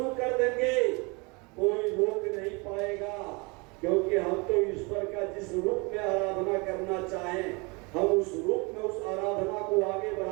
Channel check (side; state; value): left; quieter; 29.0 dB